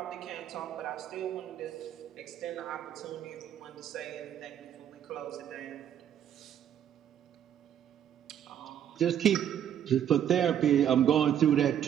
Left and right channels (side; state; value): left; quieter; 9.9 dB